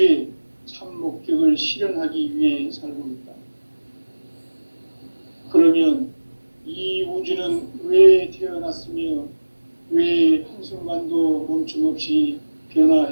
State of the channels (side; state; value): both; inverted; correlation -1.00